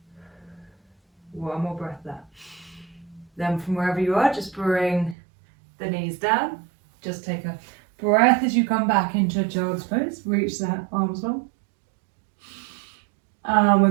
One more breath there. Then from wherever you are, just bring the knees down. Just take a breath as you come back into child's pose. Reach the arms long. And we're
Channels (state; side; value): drops out; left; at 5.2 s